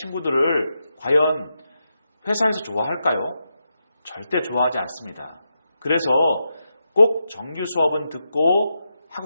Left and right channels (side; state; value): both; inverted; correlation -0.86